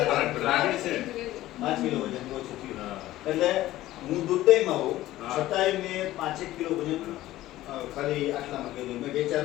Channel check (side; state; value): right; quieter; 15.5 dB